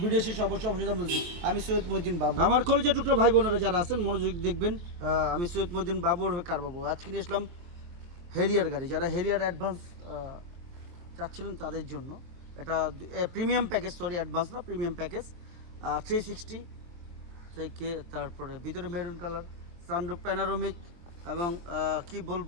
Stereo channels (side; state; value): left; late; 23 ms